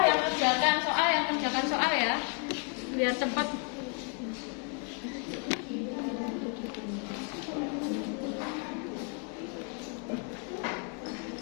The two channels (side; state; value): right; quieter; 36.4 dB